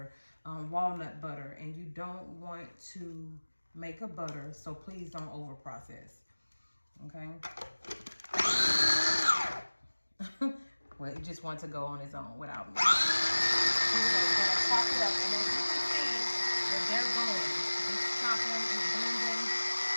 walnut butter, and you don't want to make a butter, so please don't over process. Okay. Well, it just wants to go on its own without me. Anyway, we're gonna chop it up, and as you can see, that they're going. It's chopping, it's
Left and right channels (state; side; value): inverted; both; correlation -1.00